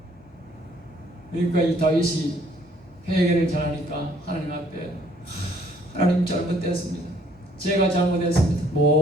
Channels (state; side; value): normal; both; correlation 0.62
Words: 그러니까 이 다윗이 회개를 잘하니까 하나님 앞에 하나님 잘못됐습니다. 제가 잘못했습니다.